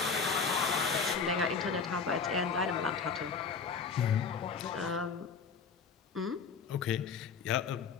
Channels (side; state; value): right; quieter; 5.6 dB